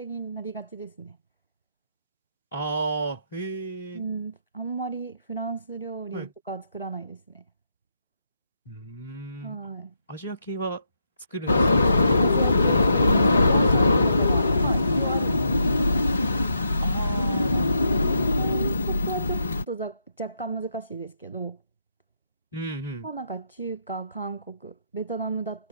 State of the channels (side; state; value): both; inverted; correlation -0.80